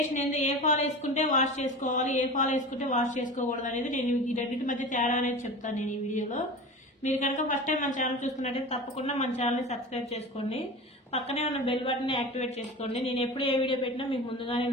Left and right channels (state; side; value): normal; both; correlation 0.32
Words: ఏంది, ఏ ఫాల్ వేసుకుంటే వాష్ చేసుకోవాలి, ఏ ఫాల్ వేసుకుంటే వాష్ చేసుకోకూడదు అనేది నేను ఈ రెండింటి మధ్య తేడా అనేది చెప్తాను నేను ఈ వీడియోలో. మీరు కనుక ఫస్ట్ టైం మన ఛానల్ చూస్తున్నట్టయితే తప్పకుండా మన ఛానల్ని సబ్స్క్రైబ్ చేసుకోండి, పక్కనే ఉన్న బెల్ బటన్ని యాక్టివేట్ చేసుకోండి. నేను ఎప్పుడు ఏ వీడియో పెట్టినా మీకు ముందుగానే